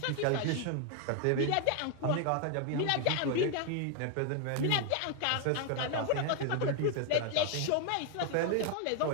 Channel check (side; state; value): both; different; correlation 0.01